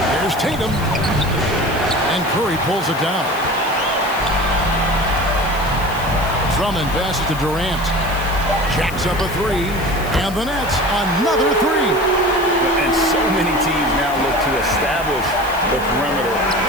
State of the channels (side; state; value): left; noise; hiss, 17 dB below the sound